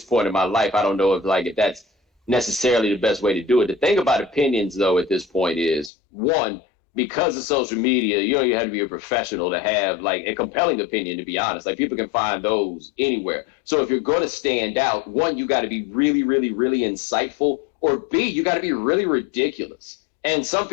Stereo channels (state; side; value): drops out; right; at 5.9 s